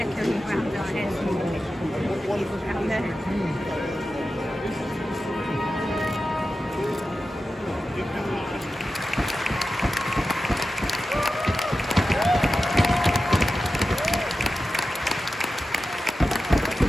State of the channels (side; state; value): both; normal; correlation 0.92